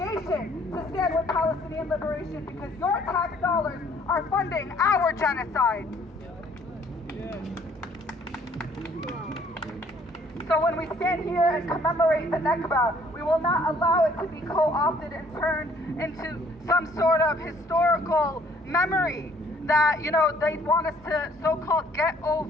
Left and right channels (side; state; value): both; normal; correlation 0.60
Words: to stand with Palestinian liberation, because your tax dollars are funding our genocide. So when we stand here and commemorate the Nakba, we will not allow it to be co-opted and turned into some sort of historical memory that, they want us to so-called get